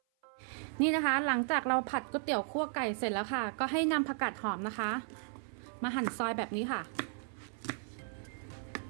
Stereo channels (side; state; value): left; silent; 54 dB below the other